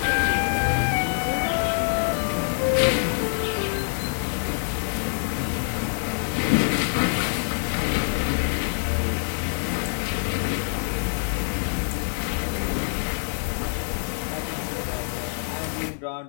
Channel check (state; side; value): silent; right; digital silence